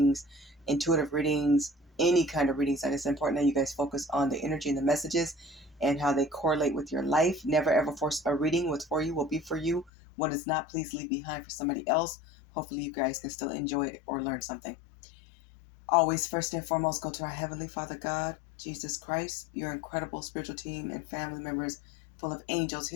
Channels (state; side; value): drops out; right; at 9.9 s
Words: intuitive readings, any kind of readings, that it's important that you guys focus on the energy and the messages and how they correlate with your life. Never ever force a reading. What's for you will be for you. What is not, please leave behind for somebody else. Hopefully you guys can still enjoy it or learn something. Always, first and foremost, go to our Heavenly Father God, Jesus Christ, your incredible spiritual team and family members full of angels,